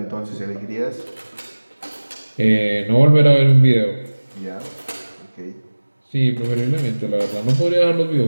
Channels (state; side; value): inverted; both; correlation -1.00